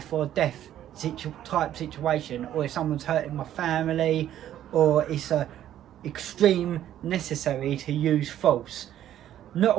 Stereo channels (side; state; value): left; quieter; 11.6 dB